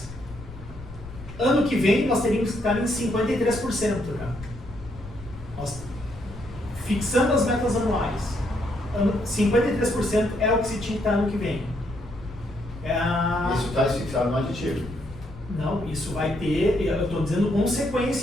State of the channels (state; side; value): noise; left; rumble, 15 dB below the sound